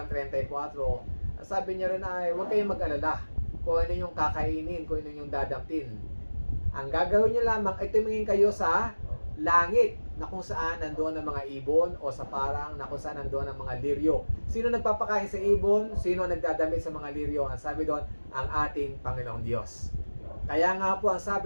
34, sabi niya rin ay huwag kayong mag-alala kung ano yung kakainin, kung ano yung dadamtin. Ang gagawin niyo lamang ay tumingin kayo sa langit na kung saan nandoon ang mga ibon o sa parang na kung saan nandoon ang mga liryo. Sino nagpapakain sa ibon? Sino nagdadamit sa mga liryo? Ang sabi doon, ang ating Panginoong Diyos. Kaya nga po ang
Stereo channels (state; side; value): inverted; both; correlation -1.00